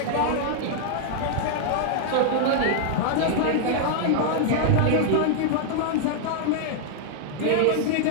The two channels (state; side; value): different; both; correlation -0.01